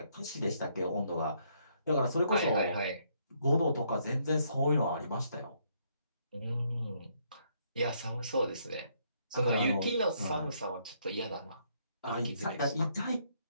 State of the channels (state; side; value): inverted; both; correlation -0.71